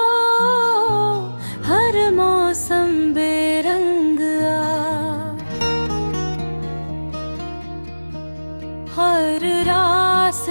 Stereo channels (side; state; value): both; inverted; correlation -1.00